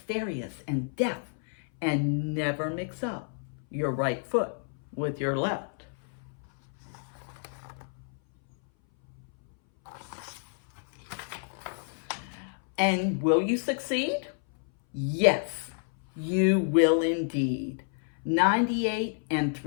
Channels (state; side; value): silent; right; 58 dB below the other